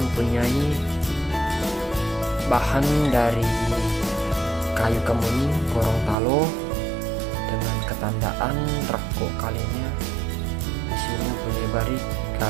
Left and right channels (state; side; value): drops out; left; at 6.2 s